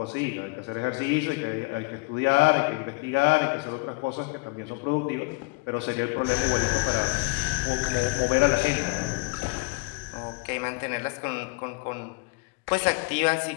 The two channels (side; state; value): right; quieter; 27.6 dB